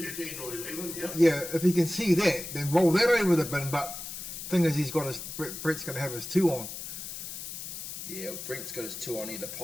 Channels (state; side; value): noise; left; hiss, 8 dB below the sound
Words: or 11, yeah. Yeah, if he can see that, then roll that over the bin. But thing is, Brett's going to have his 2 on. Yeah, well, Brent's got his 2 on either